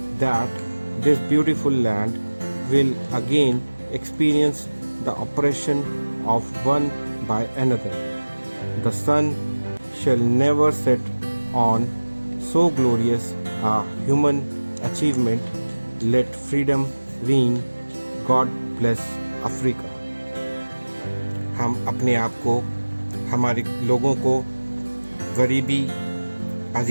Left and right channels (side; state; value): both; inverted; correlation -1.00